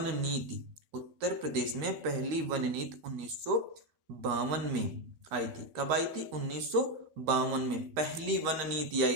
नीति 1952 में आई थी। कब आई थी, 1952 में पहली वन नीति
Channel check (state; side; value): late; left; 12 ms